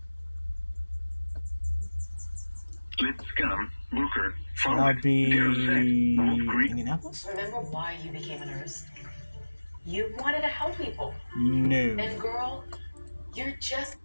Lipscomb, Luker, So that Follett, would be Darrozette, Wolf Creek. Indianapolis? Remember why you became a nurse? You wanted to help people. No. And girl, you're just...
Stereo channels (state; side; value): inverted; both; correlation -1.00